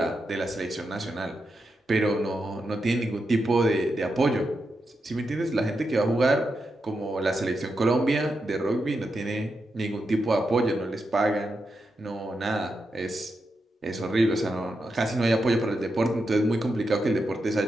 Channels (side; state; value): both; normal; correlation 0.86